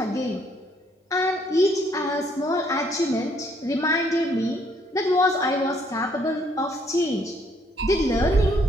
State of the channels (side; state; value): both; normal; correlation 0.67